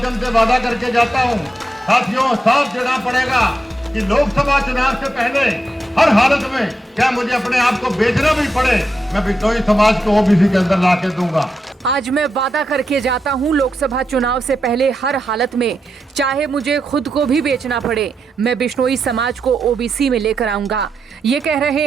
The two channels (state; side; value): normal; both; correlation 0.86